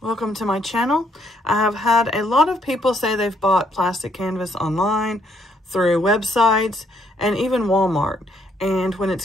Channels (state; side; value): normal; both; correlation 0.71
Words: Welcome to my channel. I have had a lot of people say they've bought plastic canvas online, through websites, and even Walmart. And when